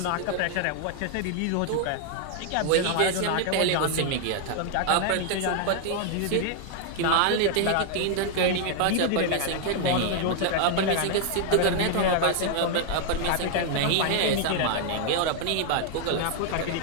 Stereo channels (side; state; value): both; different; correlation 0.00